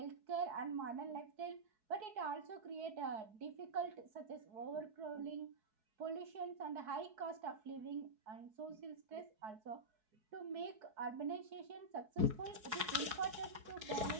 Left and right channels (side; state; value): left; late; 4.7 ms